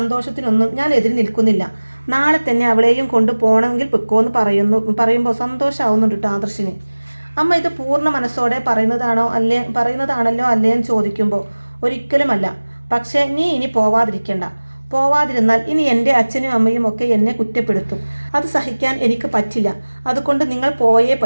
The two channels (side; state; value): both; inverted; correlation -1.00